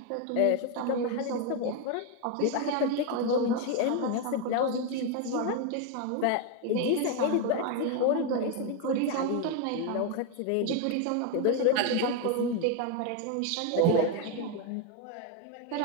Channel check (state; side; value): different; both; correlation 0.01